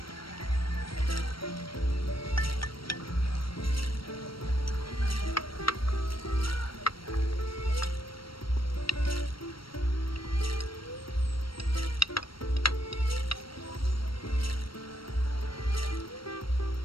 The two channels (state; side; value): late; right; 0.74 ms